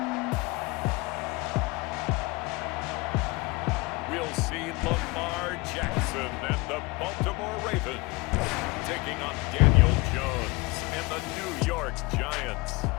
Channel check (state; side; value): quieter; right; 24.4 dB